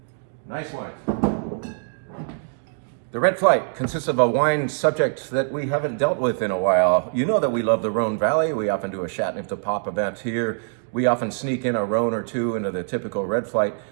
Nice wines. The Red Flight consists of a wine subject that we haven't dealt with in a while. You know that we love the Rhone Valley. We often do a Chateauneuf de Pop event here. We often sneak in a Rhone or two into the typical Red Flight.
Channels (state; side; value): silent; left; digital silence